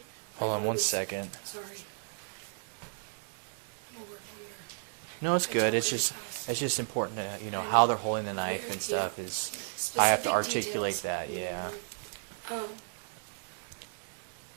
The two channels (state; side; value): silent; left; digital silence